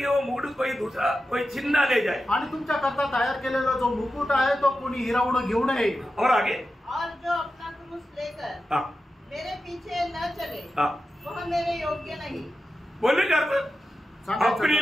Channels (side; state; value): both; normal; correlation 0.92